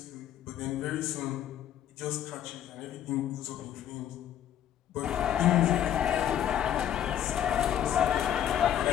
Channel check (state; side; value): quieter; right; 10.6 dB